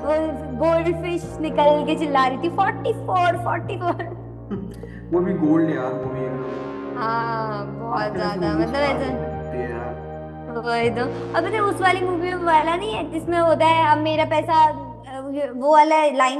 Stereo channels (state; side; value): identical; both; correlation 1.00